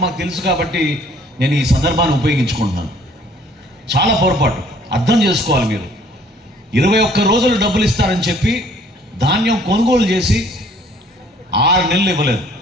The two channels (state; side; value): normal; both; correlation 0.58